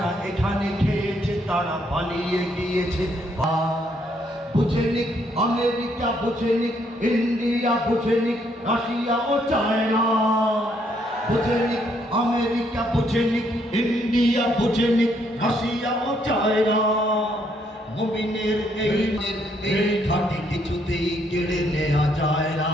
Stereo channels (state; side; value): normal; both; correlation 0.71